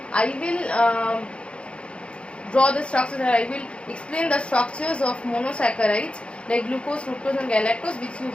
I will draw the structures and I will explain the structures of monosaccharides like glucose, fructose and galactose, which you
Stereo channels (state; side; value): late; right; 0.058 ms